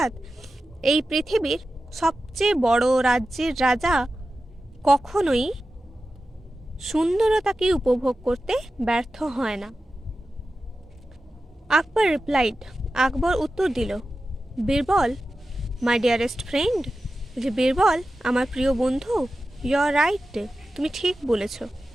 এই পৃথিবীর সবচেয়ে বড় রাজ্যের রাজা কখনোই সুন্দরতাকে উপভোগ করতে ব্যর্থ হয় না। আকবর রিপ্লাইড, আকবর উত্তর দিল, বীরবল মাই ডিয়ারেস্ট ফ্রেন্ড, যে বীরবল আমার প্রিয় বন্ধু, ইউ আর রাইট, তুমি ঠিক বলেছ।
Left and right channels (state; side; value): normal; both; correlation 0.93